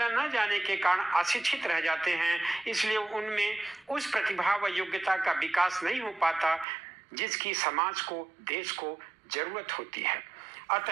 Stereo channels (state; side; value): drops out; left; at 6.7 s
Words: न जाने के कारण अशिक्षित रह जाते हैं, इसलिए उनमें उस प्रतिभा व योग्यता का विकास नहीं हो पाता जिसकी समाज को, देश को जरूरत होती है।